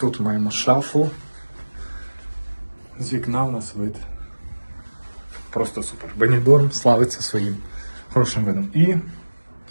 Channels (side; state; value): both; inverted; correlation -1.00